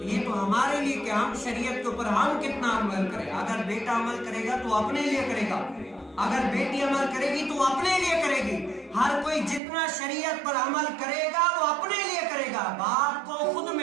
یہ تو ہمارے لیے کہ ہم شریعت کے اوپر ہم کتنا عمل کریں۔ اگر بیٹا عمل کرے گا تو اپنے لیے کرے گا، اگر بیٹی عمل کرے گی تو اپنے لیے کرے گی۔ ہر کوئی جتنا شریعت پر عمل کرے گا وہ اپنے لیے کرے گا۔ باپ کو خود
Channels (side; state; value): left; drops out; at 9.6 s